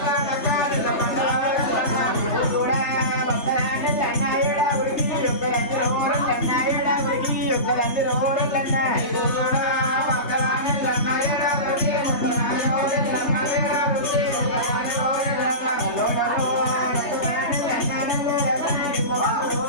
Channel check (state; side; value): late; right; 3.3 ms